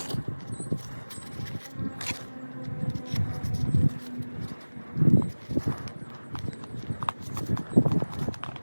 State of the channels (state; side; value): inverted; both; correlation -1.00